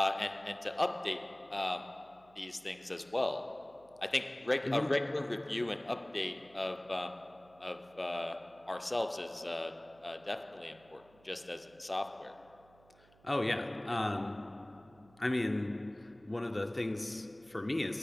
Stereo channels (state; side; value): noise; right; hum, 28 dB below the sound